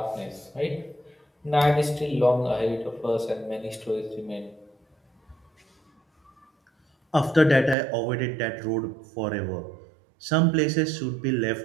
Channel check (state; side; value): drops out; left; at 7.8 s